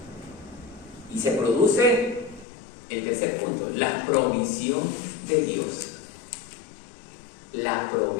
y se produce el tercer punto: la provisión de Dios. La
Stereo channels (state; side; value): drops out; right; at 2.5 s